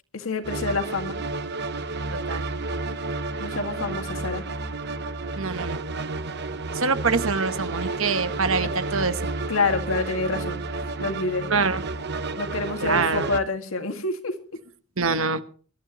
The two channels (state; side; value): normal; both; correlation -0.10